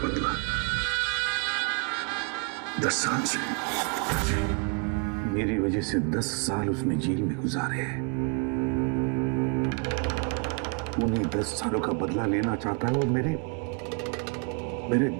10 साल से। मेरी वजह से 10 साल उसने जेल में गुजारे हैं। उन्हीं 10 सालों का बदला लेना चाहता है और मेरे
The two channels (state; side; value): quieter; left; 32.4 dB